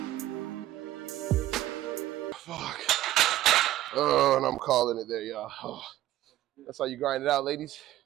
Fuck. Oh, and I'm calling it there, y'all. Oh, that's how you grind it out, ladies.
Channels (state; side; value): quieter; left; 14.3 dB